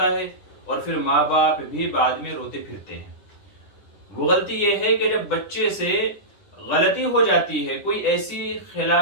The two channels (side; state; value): right; late; 10 ms